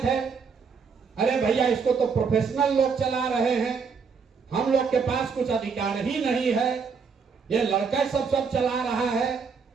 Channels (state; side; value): quieter; left; 5.6 dB